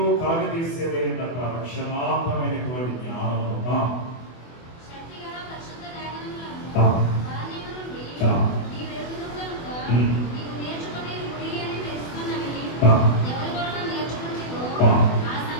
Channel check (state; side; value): late; right; 24 ms